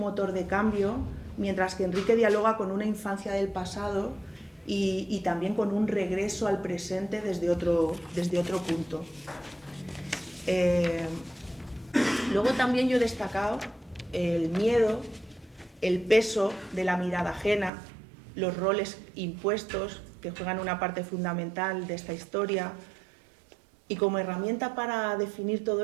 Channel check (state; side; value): drops out; left; at 17.7 s